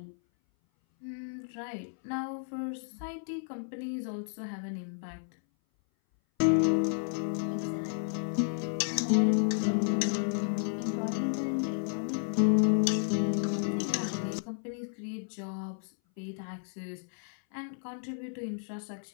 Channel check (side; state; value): right; silent; 56 dB below the other